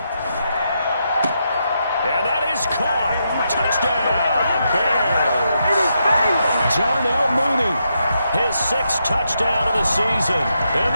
And that is caught. Touchdown, Bears. Darnell Mooney. His 6th touchdown of the season. And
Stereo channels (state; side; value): inverted; both; correlation -0.82